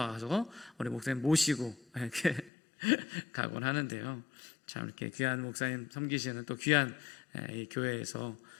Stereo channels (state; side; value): drops out; right; at 2.5 s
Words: 우리 목사님 모시고 이렇게 가곤 하는데요. 참 이렇게 귀한 목사님 섬기시는 또 귀한 이 교회에서